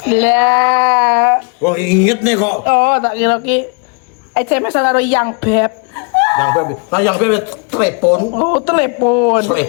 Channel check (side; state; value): right; quieter; 36.3 dB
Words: Lah. Wah inget nih kok. Oh, tak kira ki SMS karo yang beb. Yang bebek telepon. Oh, telepon.